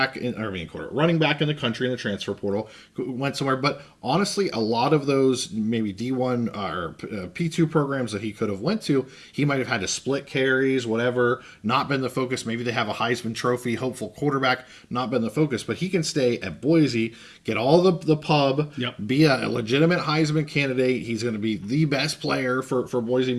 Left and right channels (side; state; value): both; identical; correlation 1.00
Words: back in the country in the transfer portal, went somewhere. But honestly, a lot of those maybe D1 or P2 programs that he could have went to, he might have had to split carries, whatever, not been the focus. Maybe they have a Heisman Trophy hopeful quarterback, not been the focus. But he can stay at Boise, get all the pub, be a legitimate Heisman candidate. He's going to be the best player for Boise,